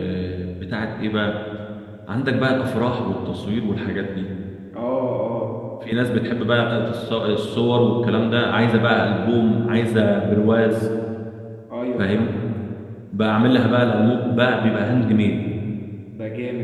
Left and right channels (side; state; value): both; identical; correlation 1.00